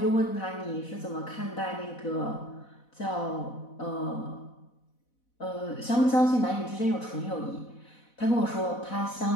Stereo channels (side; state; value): right; late; 4.1 ms